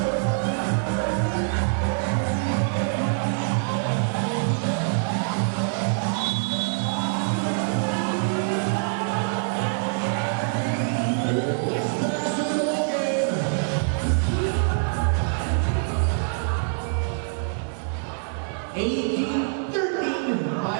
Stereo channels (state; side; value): silent; left; digital silence